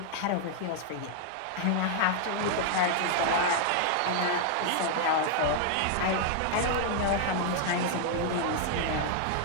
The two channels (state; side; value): different; both; correlation 0.00